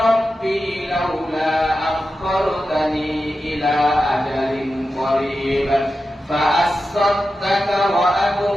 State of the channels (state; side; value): normal; both; correlation 0.91